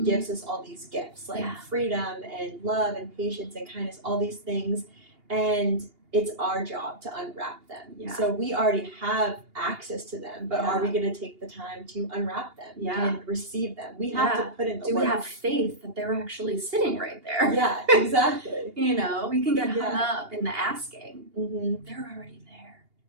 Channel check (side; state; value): left; late; 2.8 ms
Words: us all these gifts, like freedom and love and patience and kindness, all these things, and it's our job to unwrap them. Yeah. So we already have access to them, but are we going to take the time to unwrap them and receive them? We have to put in the work. Do we have faith that they're actually sitting right there? Yeah, exactly. We can get hung up in the asking. They're already there.